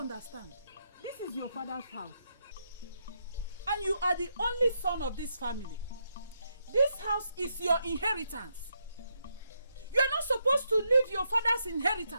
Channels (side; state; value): both; inverted; correlation -0.80